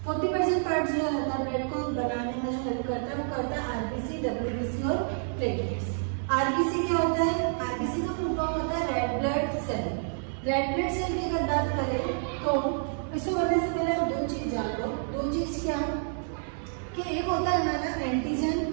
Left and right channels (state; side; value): silent; left; 59 dB below the other